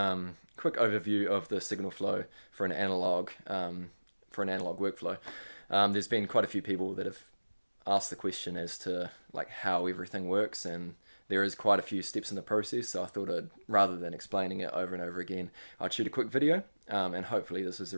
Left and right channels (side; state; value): both; inverted; correlation -1.00